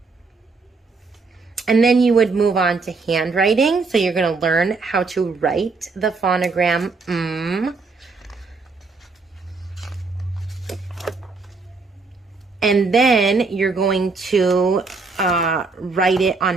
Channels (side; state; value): left; quieter; 4.2 dB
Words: you would move on to handwriting. So you're going to learn how to write the phonogram And then you're going to write it